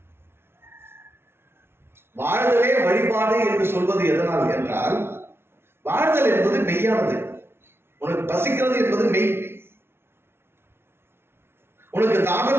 வாழ்தலே வழிபாடு என்று சொல்வது எதனால் என்றால், வாழ்தல் என்பது மெய்யானது. உனக்கு பசிக்கிறது என்பது மெய், உனக்கு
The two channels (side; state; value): left; late; 0.12 ms